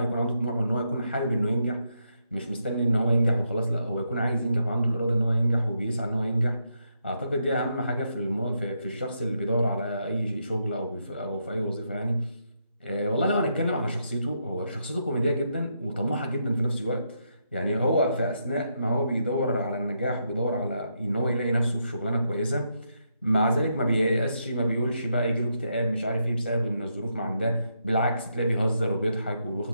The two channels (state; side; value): inverted; both; correlation -0.80